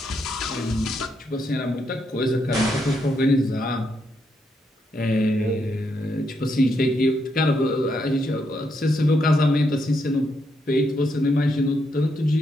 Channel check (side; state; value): both; normal; correlation 0.79